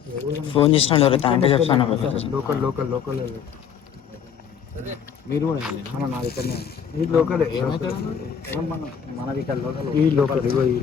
ఫోన్ చేసిన అంటే చెప్తాను లోకల్ మీరు కూడా నా దగ్గరనే ఈ లోకల్ మన ఇక్కడ లోకల్ ఈ లోకల్ ఈ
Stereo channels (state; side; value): quieter; right; 7.7 dB